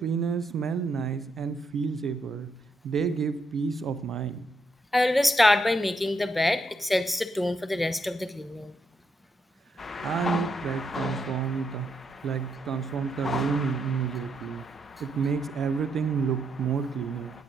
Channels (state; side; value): normal; both; correlation 0.78